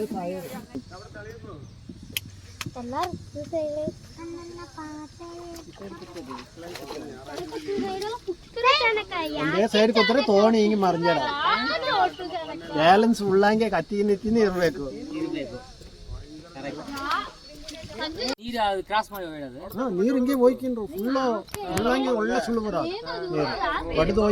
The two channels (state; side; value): identical; both; correlation 1.00